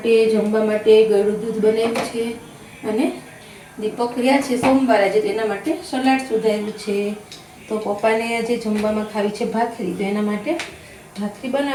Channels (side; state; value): both; identical; correlation 1.00